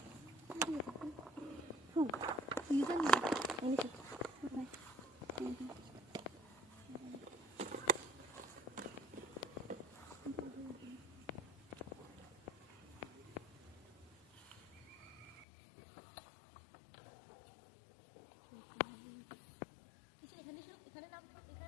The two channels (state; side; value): drops out; right; at 15.5 s